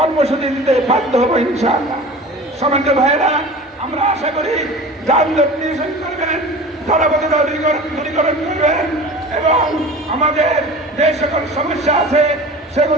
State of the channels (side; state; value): both; normal; correlation 0.37